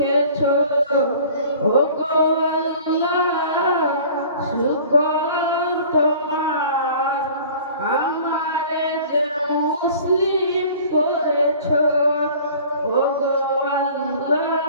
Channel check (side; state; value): both; inverted; correlation -0.46